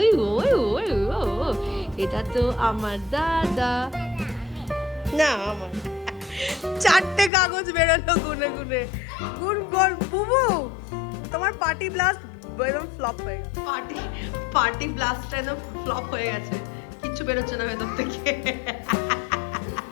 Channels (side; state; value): right; drops out; at 7.3 s